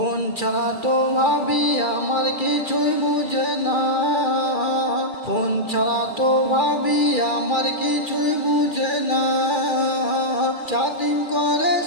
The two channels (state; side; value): late; right; 2.3 ms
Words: ছাড়া তো ভাবি আমার কিছুই বুঝে না, ফোন ছাড়া তো ভাবি আমার কিছুই বুঝে না। চ্যাটিং করে